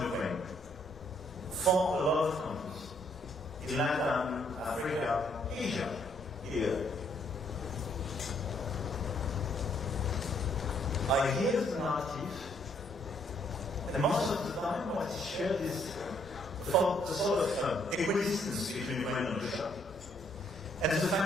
Ukraine, for a lot of countries, in Latin, Africa, Asia, here. I hear the narrative, and most of the time what is shared is the sort of equidistance between Ukraine and Russia. And the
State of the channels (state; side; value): normal; both; correlation 0.69